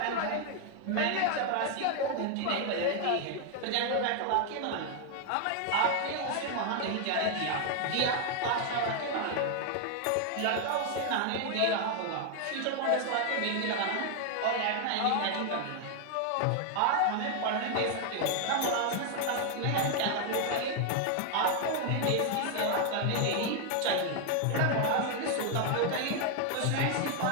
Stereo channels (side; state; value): both; different; correlation 0.00